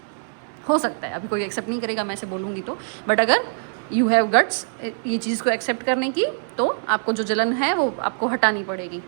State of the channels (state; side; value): silent; left; digital silence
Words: हो सकता है, अभी कोई एक्सेप्ट नहीं करेगा मैं ऐसे बोलूँगी तो, बट अगर यू हैव गट्स ये चीज़ को एक्सेप्ट करने की, तो आपको जो जलन है वो आपको हटानी पड़ेगी।